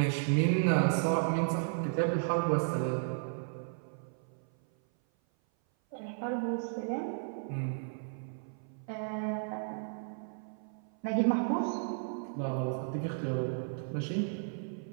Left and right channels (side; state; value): left; silent; 55 dB below the other